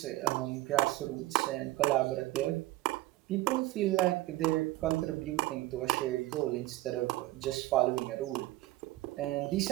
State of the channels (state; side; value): quieter; left; 17.7 dB